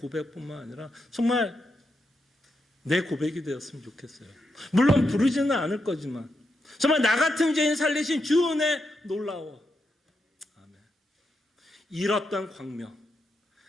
아니라 정말 내 고백이 되었으면 좋겠어요. 물론 부르지는 않을 거지만 정말 나 같은 죄인 살리신 주 은혜 놀라워. 아멘. 잃었던 광명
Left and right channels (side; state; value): both; normal; correlation 0.84